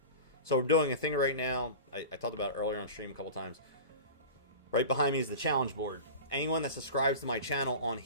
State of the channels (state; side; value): inverted; both; correlation -0.32